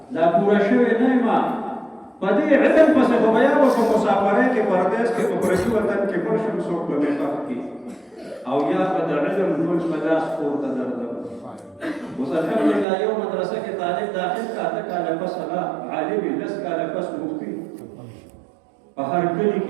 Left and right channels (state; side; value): drops out; left; at 12.9 s